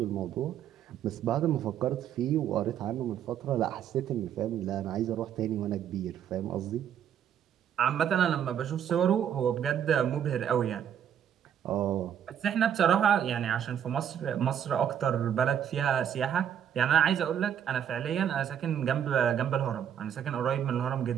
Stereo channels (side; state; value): left; quieter; 9.3 dB